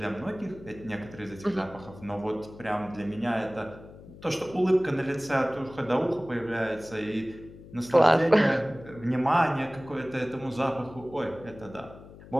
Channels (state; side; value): noise; left; hum, 18 dB below the sound